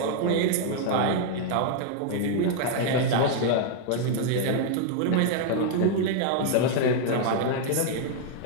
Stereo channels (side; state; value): both; different; correlation 0.00